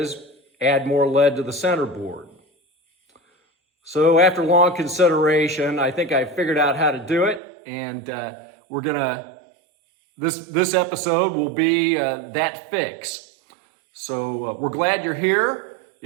add more lead to the centerboard. So after long consideration, I think I figured out how to do it, and this episode will be that fix. So we're glad you're here.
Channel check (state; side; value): drops out; left; at 7.4 s